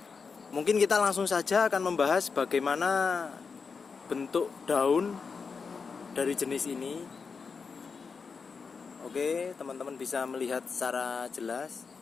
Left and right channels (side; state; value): right; quieter; 5.3 dB